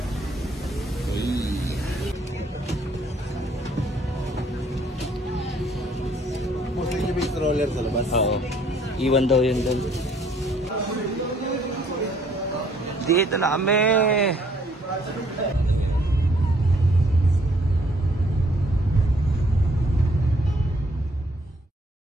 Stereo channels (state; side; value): normal; both; correlation 0.63